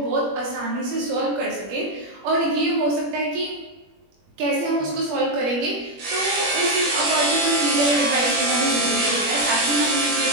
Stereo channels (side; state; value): left; late; 21 ms